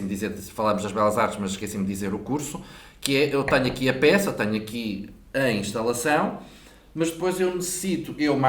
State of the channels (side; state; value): both; identical; correlation 1.00